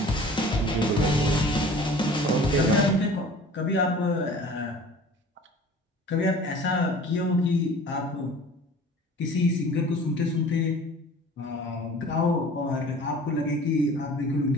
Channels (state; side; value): normal; both; correlation 0.45